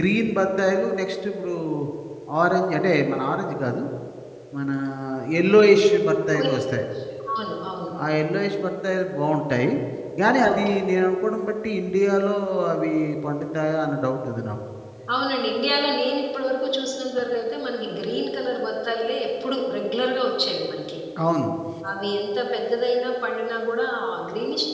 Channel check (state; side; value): identical; both; correlation 1.00